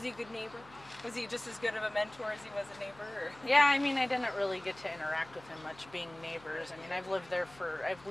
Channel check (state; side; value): noise; left; hum, 23 dB below the sound